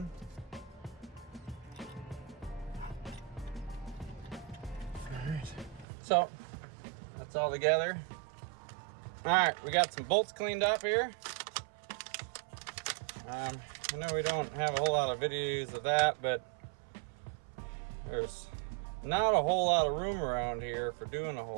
All right, so that's all together. All right, we got some bolts cleaned up here. I know we don't have a whole lot of videos of that, but there's not a whole lot of room around here for doing a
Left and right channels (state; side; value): drops out; left; at 5.9 s